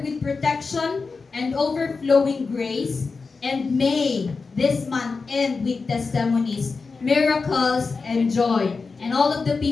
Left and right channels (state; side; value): quieter; right; 4.5 dB